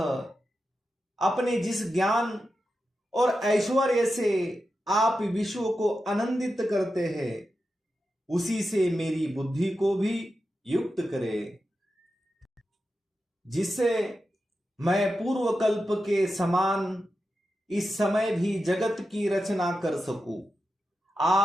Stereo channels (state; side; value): normal; both; correlation 0.90